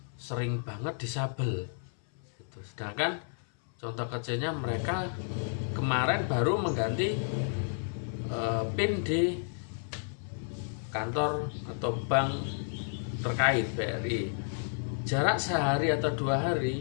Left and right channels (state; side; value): silent; right; 57 dB below the other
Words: sering banget disabel gitu. Sedangkan contoh kecilnya, mereka kemarin baru mengganti PIN di kantor atau bank terkait BRI. Jarak sehari atau 2 hari